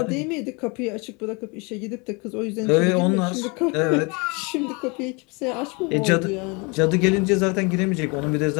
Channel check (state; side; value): quieter; right; 29.7 dB